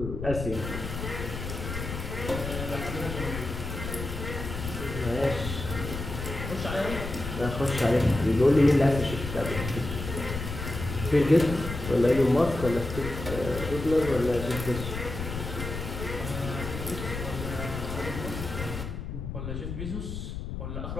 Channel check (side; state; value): left; noise; rumble, 6 dB below the sound